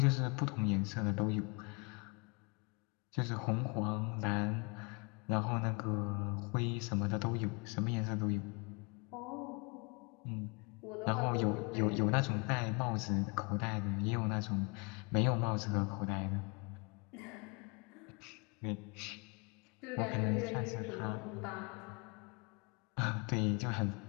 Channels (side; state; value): right; quieter; 31.7 dB